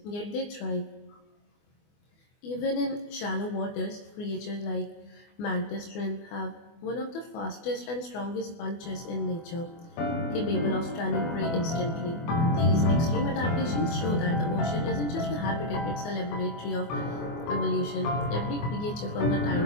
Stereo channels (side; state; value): right; late; 24 ms